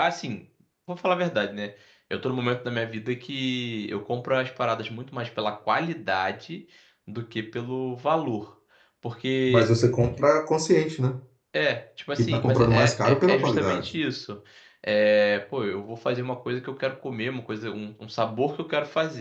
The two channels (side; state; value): both; identical; correlation 1.00